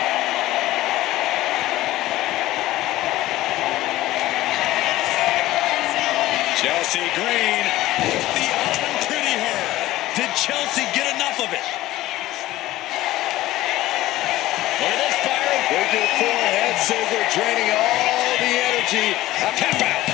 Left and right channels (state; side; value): quieter; right; 16.3 dB